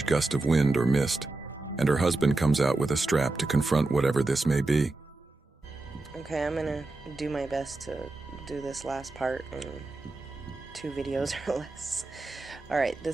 gust of wind or mist, and her husband comes out with a strap to confront whatever this may be. Okay, I'm gonna do my best to do this last part in 2 videos or less. Alright,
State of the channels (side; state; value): left; quieter; 3.1 dB